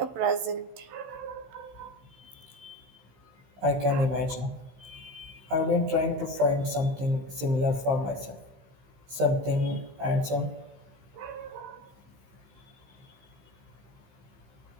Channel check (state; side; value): late; left; 15 ms